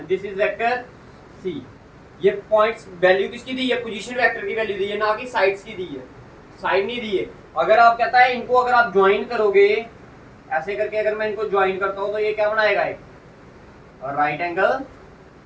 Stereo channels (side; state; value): both; identical; correlation 1.00